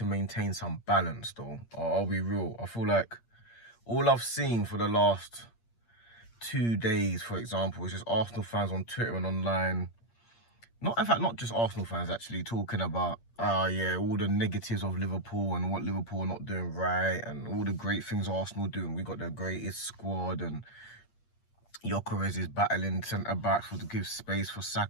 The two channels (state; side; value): late; right; 8.6 ms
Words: maintain some balance, though. I'll be real. I feel like all I've seen for the last 2 days, for example, is just Arsenal fans on Twitter and online. Not, in fact, not just Arsenal fans actually talking about, yeah, all the negatives of Liverpool and what Liverpool are not doing right and all the great things Arsenal doing. We got the greatest squad and Gyökeres is battling centre backs to give space for